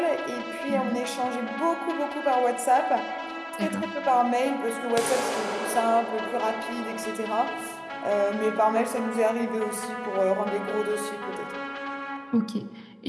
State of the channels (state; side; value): identical; both; correlation 1.00